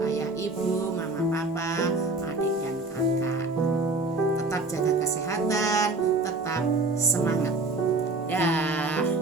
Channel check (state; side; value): quieter; left; 3.2 dB